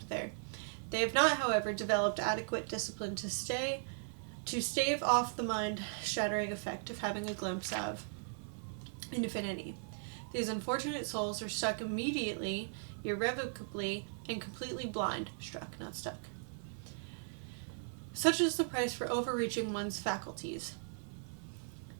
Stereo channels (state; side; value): silent; left; 53 dB below the other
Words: there. They have not, however, developed adequate discipline to stave off the mind-shattering effect of having a glimpse of infinity. These unfortunate souls are struck immediately, irrevocably, and completely blind. Struck, not stuck. Such is the price for overreaching one's faculties.